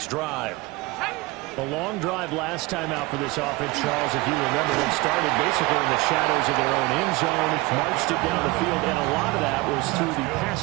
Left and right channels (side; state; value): left; quieter; 22.2 dB